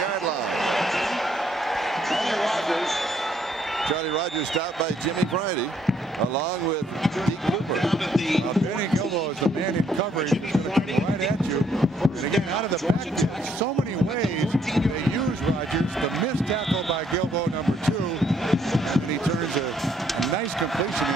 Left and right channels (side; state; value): both; normal; correlation 0.69